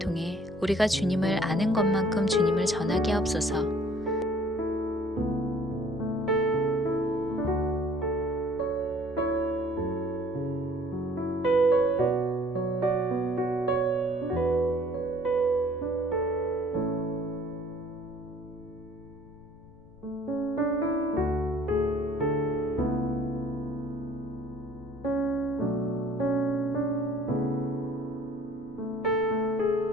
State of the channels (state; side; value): noise; left; rumble, 24 dB below the sound